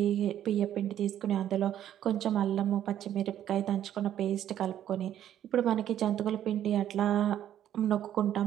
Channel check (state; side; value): quieter; left; 11.0 dB